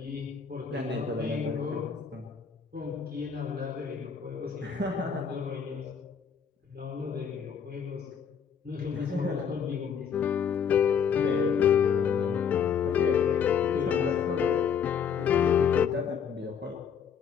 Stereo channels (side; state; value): right; quieter; 7.2 dB